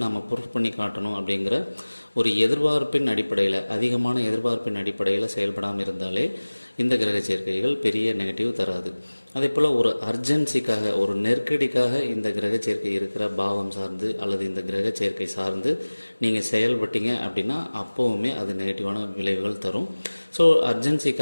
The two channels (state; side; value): inverted; both; correlation -1.00